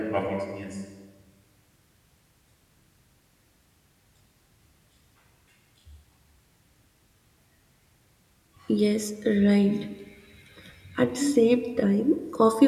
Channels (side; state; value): both; identical; correlation 1.00